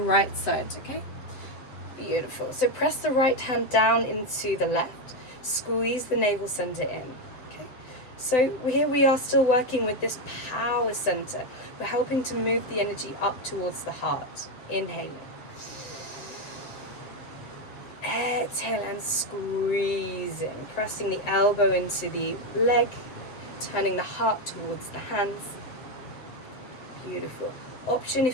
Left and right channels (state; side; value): late; right; 7.8 ms